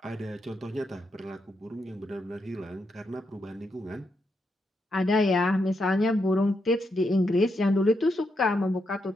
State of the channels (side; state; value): both; normal; correlation 0.82